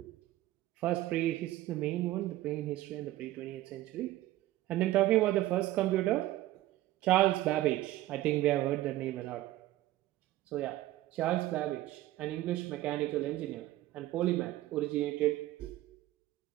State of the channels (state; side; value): quieter; left; 15.7 dB